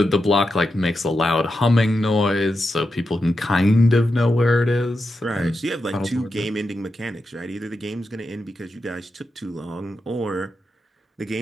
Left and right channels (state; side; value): normal; both; correlation 0.87